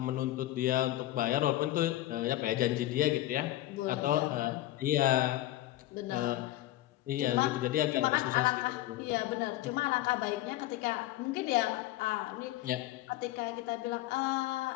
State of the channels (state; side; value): quieter; right; 15.7 dB